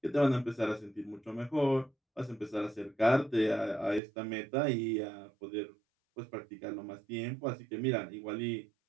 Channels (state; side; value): drops out; left; at 4.0 s